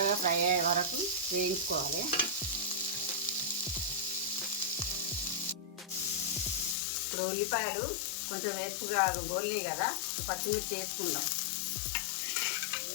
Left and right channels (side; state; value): right; drops out; at 6.8 s